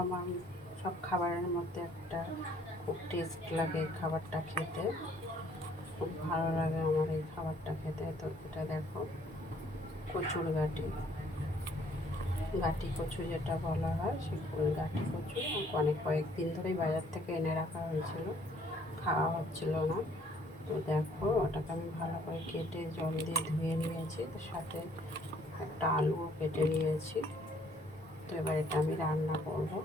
আমার সব খাবারের মধ্যে একটা খুব টেস্ট লাগে। খাবারটা খেতে খুব ভালো লাগে আমার, এই খাবারটা খেতে। তো এটা দেখো, কচুর গাটি গাটি কচু যেটা বলা হয়, সে গাটি কচু কয়েকদিন ধরেই বাজার থেকে এনে রাখা হয়েছিল, খাওয়া হচ্ছিল না। তো দেখো, ওটাকে আমি ভালো করে কেটে জল দিয়ে ধুয়ে নিয়েছি। তো সাথে একটা আলুও কেটে নিয়েছি। তো এবার এটা আমি রান্না করব।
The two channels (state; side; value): normal; both; correlation 0.62